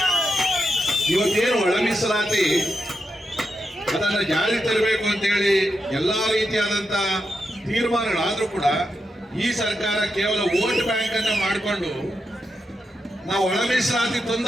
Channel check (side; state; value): both; normal; correlation 0.86